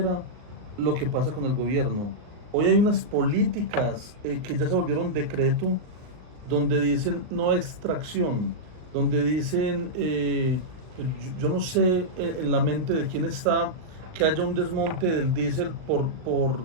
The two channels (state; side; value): late; left; 38 ms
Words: lo que pasa con el gobierno. Hoy hay unas políticas que ya se volvieron decreto, donde dicen no extracción, donde dicen, yo no sé en la mente de quién está que haya un desmonte del diésel por